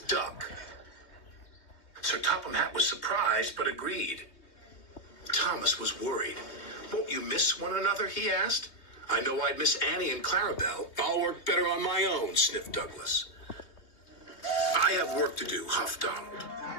Duck." Sir Topham Hatt was surprised, but agreed. Thomas was worried. "Won't you miss one another?" he asked. "I know I'd miss Annie and Clarabelle. I'll work better on my own," sniffed Douglas. "I have work to do," huffed Donald.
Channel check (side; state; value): right; late; 3.1 ms